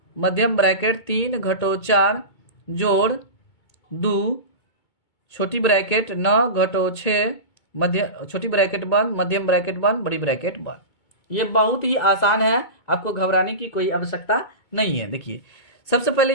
मध्यम ब्रैकेट 3 घटो 4 जोड़ 2 छोटी ब्रैकेट 9 घटो 6 छोटी ब्रैकेट बंद, मध्यम ब्रैकेट बंद, बड़ी ब्रैकेट बंद। ये बहुत ही आसान है, आपको घबराने की कोई आवश्यकता नहीं है। देखिए सबसे पहले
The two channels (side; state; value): right; late; 2.2 ms